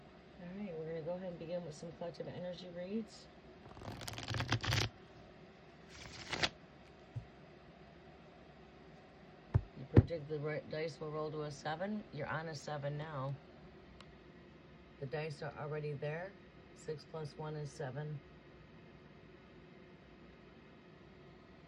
right, we're going to go ahead and begin with some collective energy reads. You predict the dice will roll to a 7. You're on a 7 now. The dice are already there. 6 plus 1 is 7.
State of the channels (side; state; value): both; identical; correlation 1.00